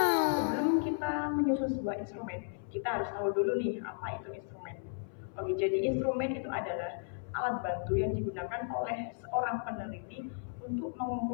Sebelum kita menyusun sebuah instrumen, kita harus tahu dulu nih apa itu instrumen. Oke, jadi instrumen itu adalah alat bantu yang digunakan oleh seorang peneliti untuk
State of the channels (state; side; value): silent; right; 55 dB below the other